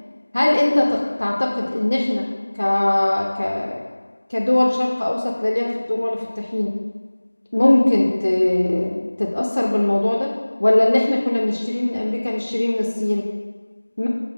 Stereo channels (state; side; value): inverted; both; correlation -1.00